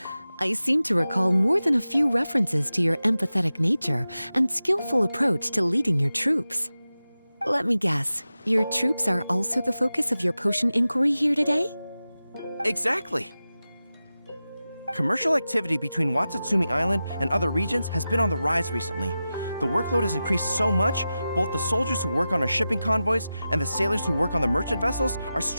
I seem to recall more than a few references to your empathetic nature and skillful approach to leading your troops. Let me guess, your troops are also the focus of your potion inquiry here today? Exactly. Commercial activity between Watatsumi Island and other regions has been on the rise recently. The workload has increased so much, both the soldiers who work on our shipping convoys and the sailors who work on the merchant vessels are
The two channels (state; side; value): inverted; both; correlation -0.94